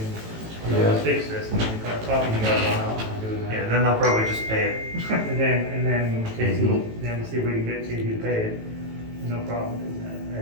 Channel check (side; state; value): left; late; 18 ms